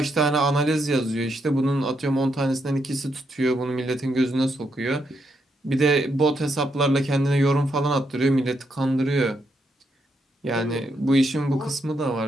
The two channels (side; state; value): both; normal; correlation 0.79